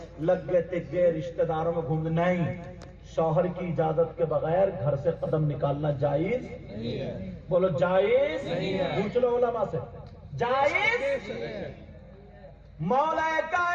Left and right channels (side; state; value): both; identical; correlation 1.00